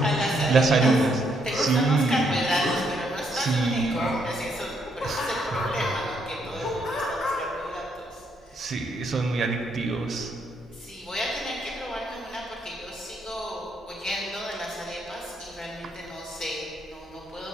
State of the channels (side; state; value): both; normal; correlation 0.74